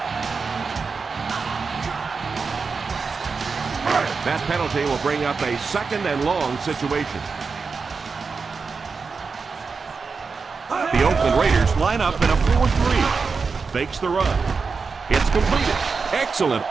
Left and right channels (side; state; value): left; quieter; 4.9 dB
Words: That penalty will bring up a second and long situation. The Oakland Raiders line up in a 4-3. Fakes the run. It's completed. Excellent